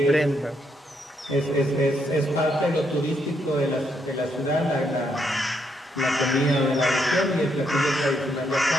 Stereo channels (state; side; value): normal; both; correlation 0.76